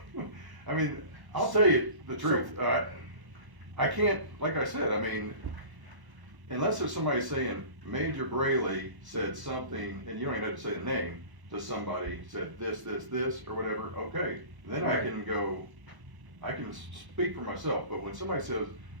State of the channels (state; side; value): late; left; 1.1 ms